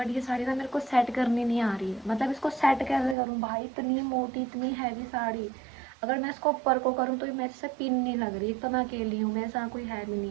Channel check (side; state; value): left; drops out; at 3.2 s